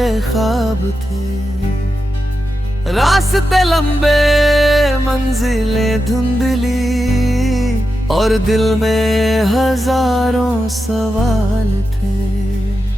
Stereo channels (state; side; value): normal; both; correlation 0.89